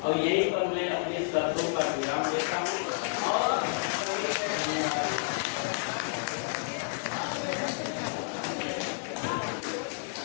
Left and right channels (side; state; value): right; silent; digital silence